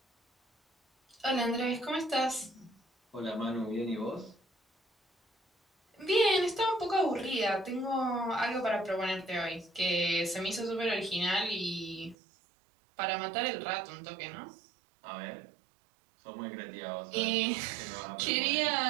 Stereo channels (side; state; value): left; drops out; at 12.2 s